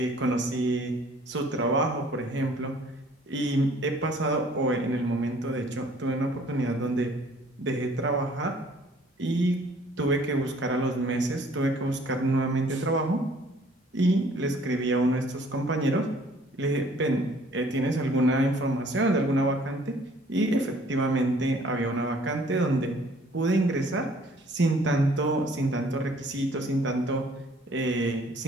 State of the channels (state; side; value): normal; both; correlation 0.57